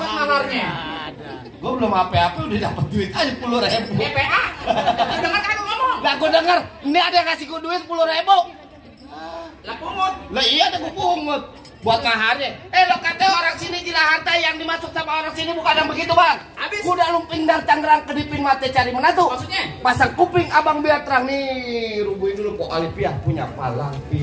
maharnya. Gue belum apa-apa udah dapat duit aja 10.000. DPA. Dengar kan lu ngomong? Lah gue denger, ini ada yang kasih gue duit 10.000. Lah pungut. Lah iya ada gue pungut buat maharnya. Lo kata orang sini Jilaharta yang dimasuk sama orang sini bukan yang begitu, Bang. Habis. Kuda lumping dari Tangerang kedipin mata cari menantu. Maksudnya? Pasang kuping abang biar terang nih. Rubuhin dulu Pok Alifia punya palang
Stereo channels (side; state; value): both; identical; correlation 1.00